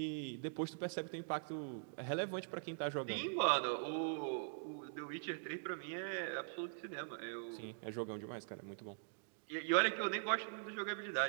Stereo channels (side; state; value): left; silent; digital silence